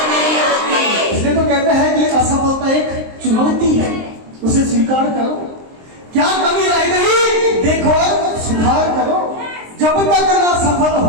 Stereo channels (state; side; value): late; left; 23 ms